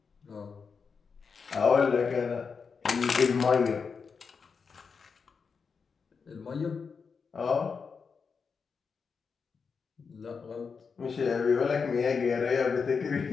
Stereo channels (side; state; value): right; quieter; 5.5 dB